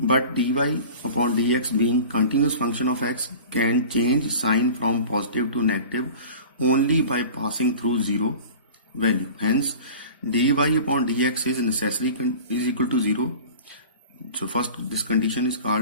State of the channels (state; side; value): inverted; both; correlation -0.39